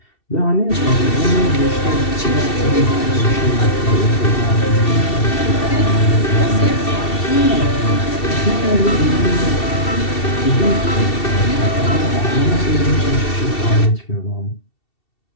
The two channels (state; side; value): late; right; 2.7 ms